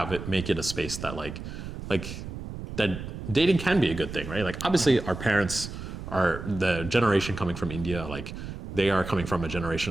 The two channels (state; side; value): noise; right; rumble, 9 dB below the sound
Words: it, make it a space that like that dating can be a good thing, right? Like obviously our parents are the generation coming from India, like they are coming from a